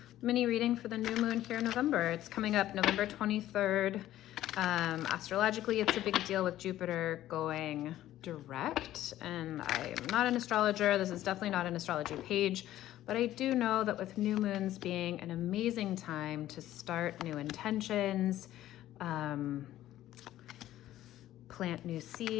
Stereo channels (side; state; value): right; quieter; 13.6 dB